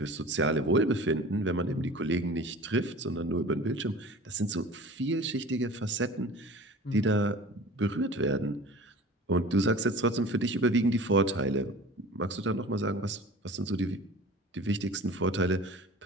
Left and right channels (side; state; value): both; normal; correlation 0.40